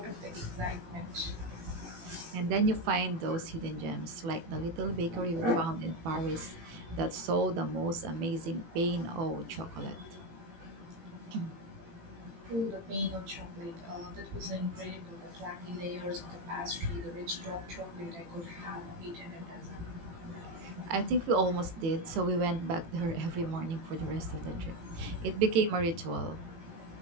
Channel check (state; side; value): late; left; 18 ms